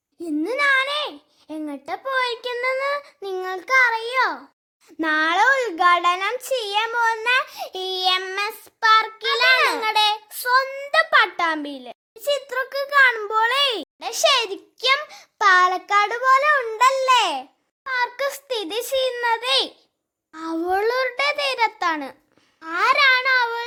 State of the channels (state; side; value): identical; both; correlation 1.00